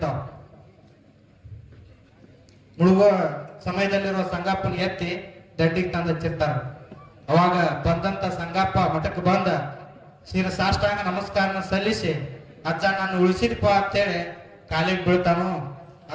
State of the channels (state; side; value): identical; both; correlation 1.00